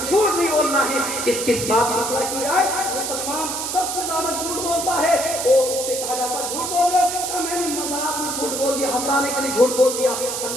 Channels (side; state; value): right; noise; hiss, 3 dB below the sound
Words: جھوٹ نہیں بولنا ہے۔ کس بات کی مسئلہ کی جائے مسلمان سب سے زیادہ جھوٹ بولتا ہے، اور اس سے کہا جاتا ہے جھوٹ بول رہے ہو، میں نے مذاق میں جھوٹ بول دیا، ہنسانے کے لیے جھوٹ بول دیا۔